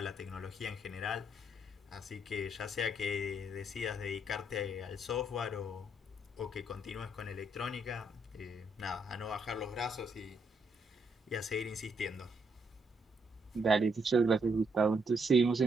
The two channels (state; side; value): normal; both; correlation 0.74